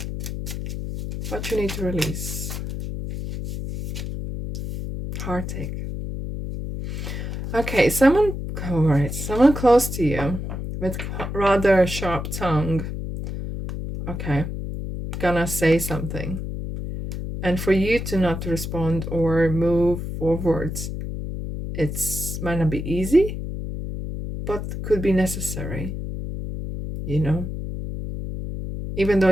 What you need to release. Heartache. Okay, someone close to you with rather sharp tongue. Okay, gonna say something. And for you to not respond or move forwards, might not be easy, but could be necessary. You know? Even though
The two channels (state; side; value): noise; left; hum, 5 dB below the sound